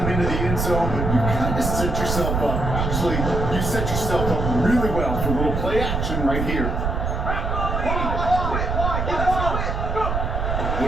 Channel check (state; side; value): noise; right; rumble, 1 dB below the sound